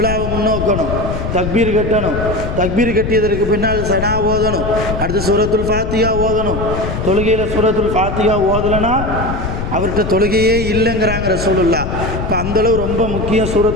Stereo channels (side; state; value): left; noise; rumble, 4 dB below the sound